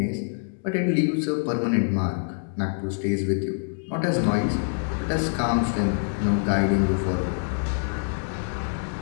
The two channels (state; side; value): silent; right; digital silence